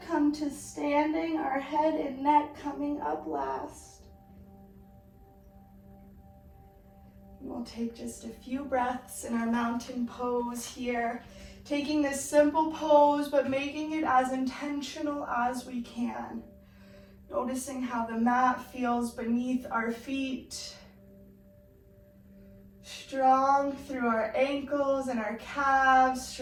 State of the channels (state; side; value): identical; both; correlation 1.00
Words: to standing, our head and neck coming up last. We'll take just a few breaths in our mountain pose here, taking this simple pose, but making it as intentional as we can. Noticing how the mat feels beneath our feet. Strong through our ankles and our calves,